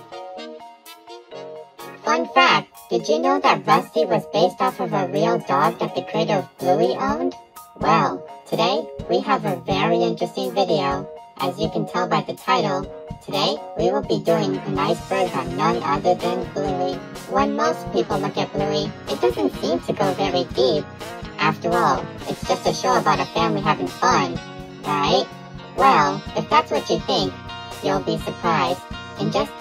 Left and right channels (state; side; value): identical; both; correlation 1.00